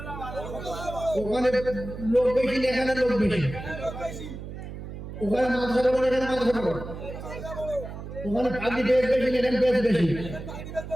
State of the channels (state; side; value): noise; right; hum, 10 dB below the sound